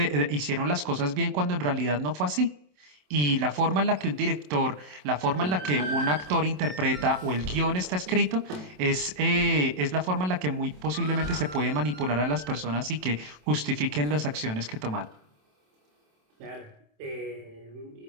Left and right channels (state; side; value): late; left; 27 ms